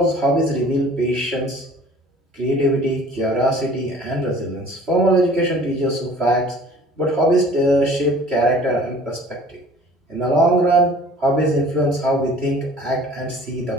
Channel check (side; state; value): both; normal; correlation 0.49